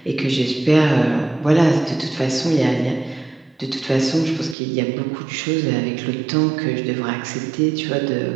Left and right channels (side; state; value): left; drops out; at 4.5 s